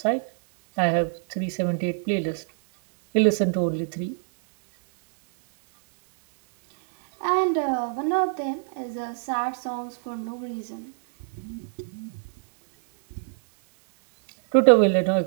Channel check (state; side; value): silent; left; digital silence